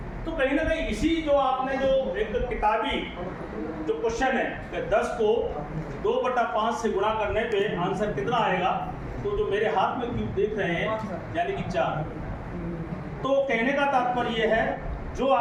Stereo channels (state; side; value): identical; both; correlation 1.00